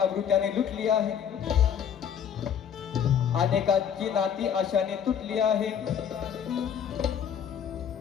लुटली आहे, अनेकांची नाती आशाने तुटली आहे.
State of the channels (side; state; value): right; quieter; 8.3 dB